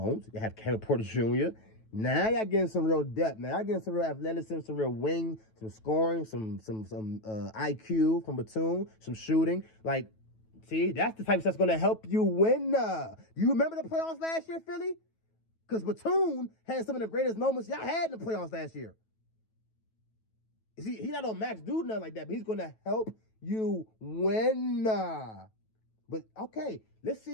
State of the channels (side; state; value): right; late; 9.2 ms